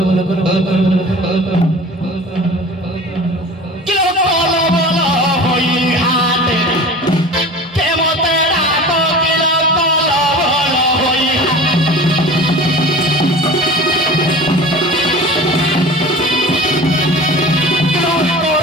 बोलो कल बोलो किलो कल बोलो होई हाथ के मोतेरा को किलो कल बोलो होई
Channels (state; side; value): normal; both; correlation 0.38